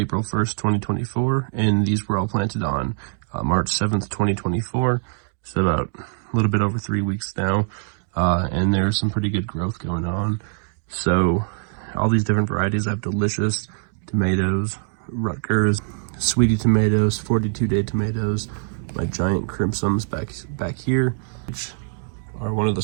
1st, 2024, and these were all planted on March 7th, 2024. So about a little bit over 3 weeks now, and there's some pretty good growth going on. So all these different varieties. I have Delicious tomatoes, Rutgers, Sweetie tomatoes, 42-day tomatoes, my giant crimsons back here, which are one of the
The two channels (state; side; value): silent; left; digital silence